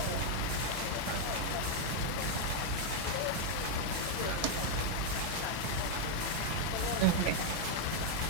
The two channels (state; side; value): different; both; correlation 0.00